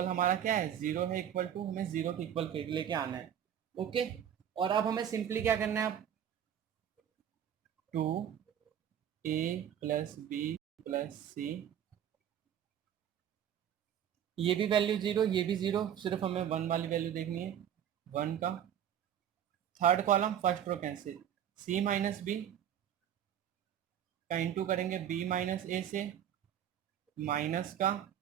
हमारा क्या है, जीरो है, इक्वल टू हमें जीरो के इक्वल लेके आना है। ओके, और अब हमें सिंपली क्या करना है, 2a प्लस बी प्लस सी, ये भी वैल्यू जीरो, ये भी जीरो, सिर्फ हमें वन वाली वैल्यू देखनी है, वन का third column first row cancel, c minus B का इंटू करेंगे b माइनस ए से, माइनस का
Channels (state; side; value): quieter; left; 9.7 dB